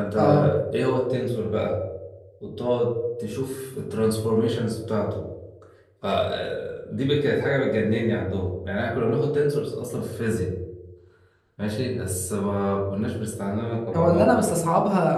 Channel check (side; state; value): both; identical; correlation 1.00